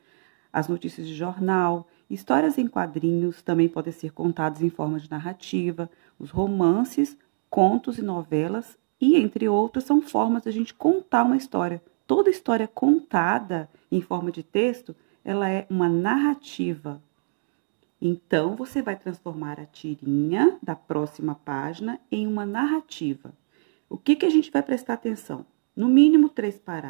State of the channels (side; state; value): left; silent; digital silence